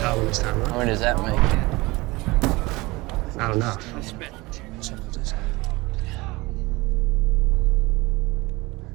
this time, How huh? many does that make? Not enough.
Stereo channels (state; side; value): quieter; left; 22.3 dB